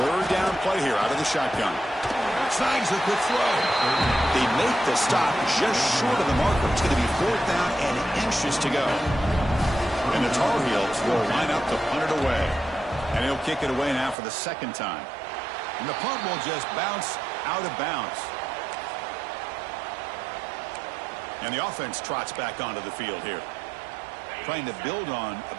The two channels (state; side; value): drops out; left; at 14.2 s